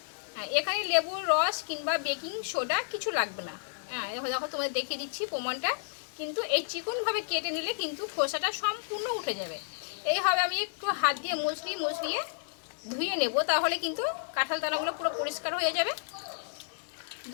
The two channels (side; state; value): right; silent; digital silence